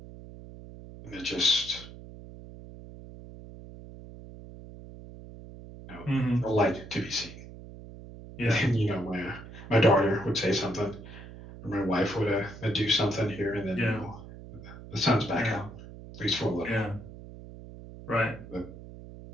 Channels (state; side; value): noise; right; hum, 15 dB below the sound